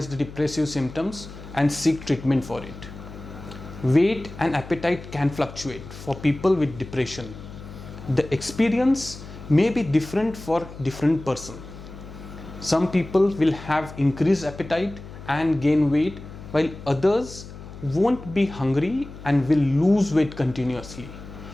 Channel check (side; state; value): left; noise; hum, 14 dB below the sound